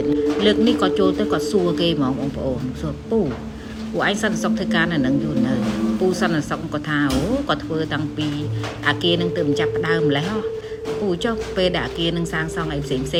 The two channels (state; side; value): identical; both; correlation 1.00